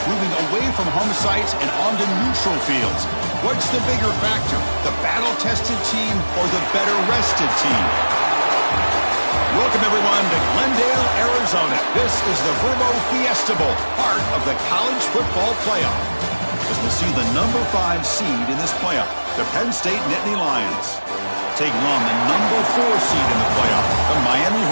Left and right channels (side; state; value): both; inverted; correlation -1.00